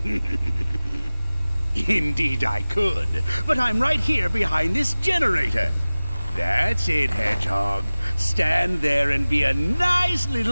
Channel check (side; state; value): both; inverted; correlation -0.98